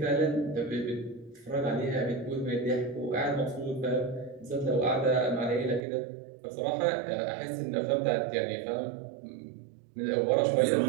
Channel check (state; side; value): drops out; left; at 5.8 s